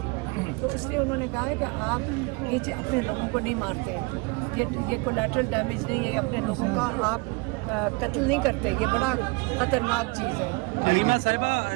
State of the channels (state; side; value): quieter; left; 27.9 dB